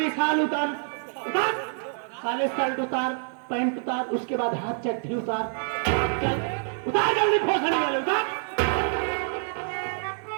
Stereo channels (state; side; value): silent; left; digital silence